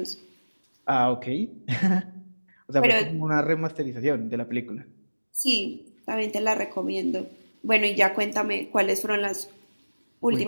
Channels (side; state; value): both; inverted; correlation -1.00